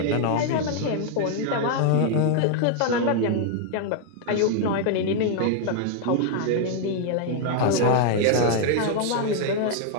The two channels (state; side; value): different; both; correlation 0.00